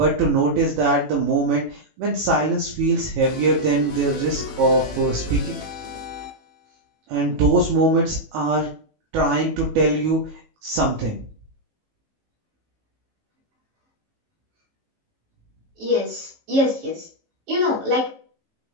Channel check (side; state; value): left; late; 18 ms